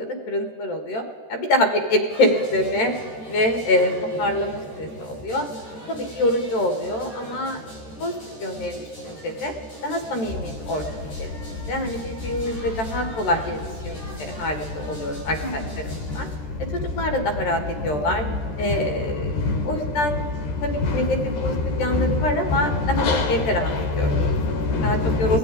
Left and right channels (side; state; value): right; late; 13 ms